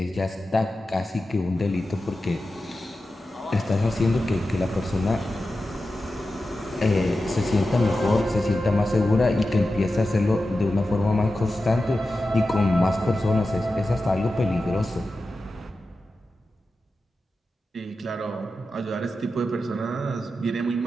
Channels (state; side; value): normal; both; correlation 0.92